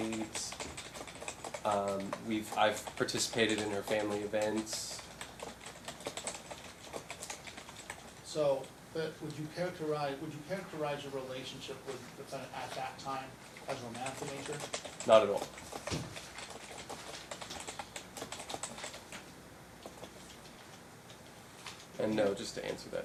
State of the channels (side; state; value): both; identical; correlation 1.00